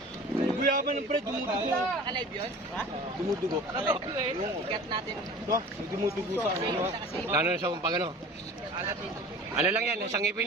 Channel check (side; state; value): both; normal; correlation 0.40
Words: Guyaban ng pre, dumudugo. Naka-live yun? Ha? Dumudugo. Naka-live yun eh. Ikat natin. Ito, may dumudugo sa ano. Lalo na sa pag ano. Ano lang yan, sangipin